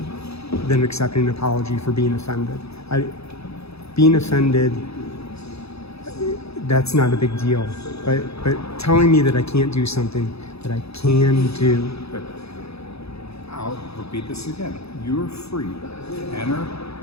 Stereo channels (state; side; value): late; right; 0.78 ms